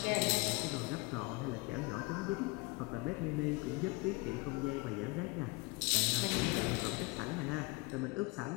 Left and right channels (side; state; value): right; quieter; 25.6 dB